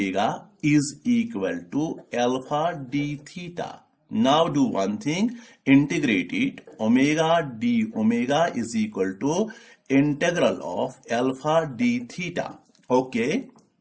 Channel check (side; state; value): both; identical; correlation 1.00